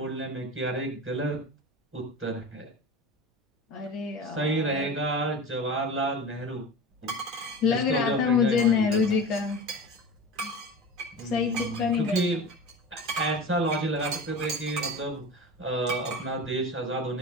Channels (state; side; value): normal; both; correlation 0.32